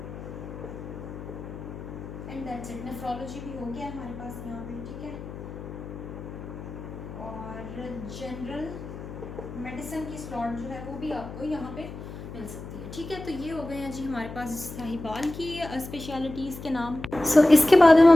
and that's it. Nephrology भी हो गया हमारे पास यहाँ पे, ठीक है। और जनरल मेडिसिन की स्लॉट जो है वो भी आपको यहाँ पे मिल सकती है, ठीक है। तो ये हो गए हैं जी हमारे पास साहिवाल की स्पेशलिटीज़ के नाम। इसके बाद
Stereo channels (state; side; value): noise; left; hum, 11 dB below the sound